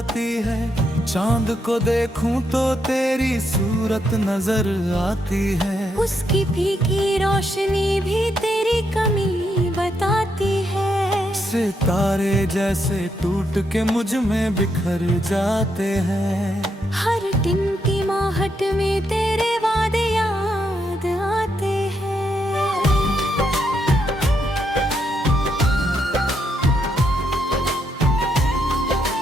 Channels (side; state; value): both; normal; correlation 0.79